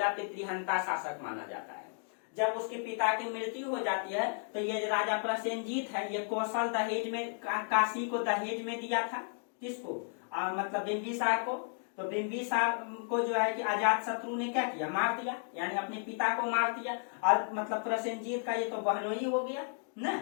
पितृहंता शासक माना जाता है। जब उसके पिता की मृत्यु हो जाती है, तो ये राजा प्रसेनजीत है, ये कौशल दहेज में, काशी को दहेज में दिया था। किसको, मतलब बिंबिसार को। तो बिंबिसार को जो है कि अजात शत्रु ने क्या किया, मार दिया, यानी अपने पिता को मार दिया। और मतलब प्रसेनजीत का ये तो बहनोई हो गया ना,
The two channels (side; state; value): right; silent; 55 dB below the other